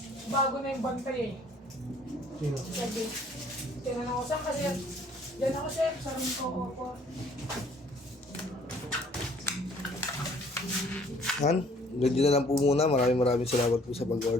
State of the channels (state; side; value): normal; both; correlation 0.58